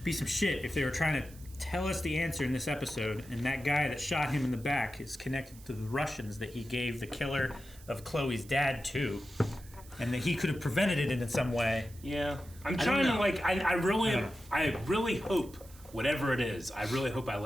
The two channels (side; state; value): right; noise; hiss, 22 dB below the sound